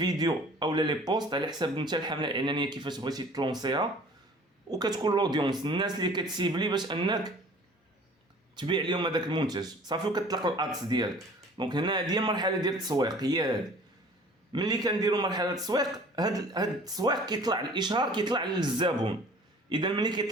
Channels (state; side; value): normal; both; correlation 0.48